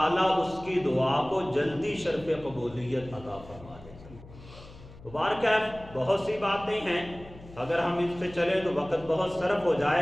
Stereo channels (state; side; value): noise; left; hum, 19 dB below the sound